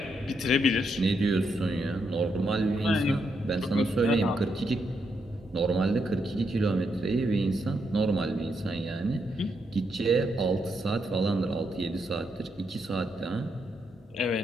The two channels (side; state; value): both; normal; correlation 0.80